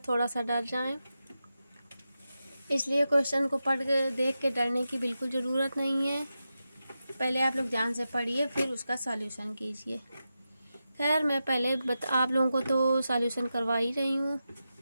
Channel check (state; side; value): inverted; both; correlation -0.90